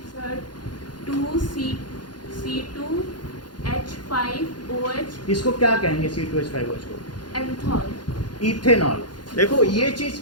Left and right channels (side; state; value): right; late; 0.71 ms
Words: सर 2C2H5OH इसको क्या कहेंगे, C2H5OH को एंथॉल। इथेनॉल। देखो ये चीज